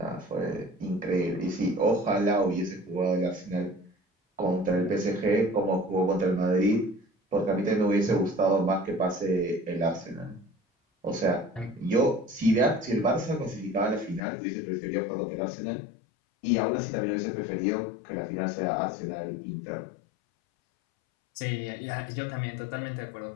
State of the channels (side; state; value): right; drops out; at 14.2 s